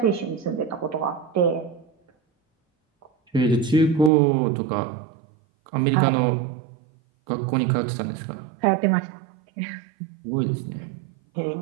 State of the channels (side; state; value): left; drops out; at 4.1 s